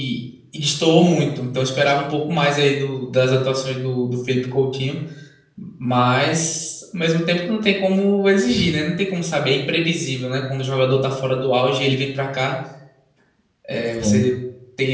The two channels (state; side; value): identical; both; correlation 1.00